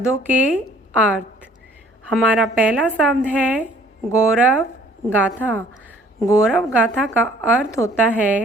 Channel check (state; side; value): normal; both; correlation 0.56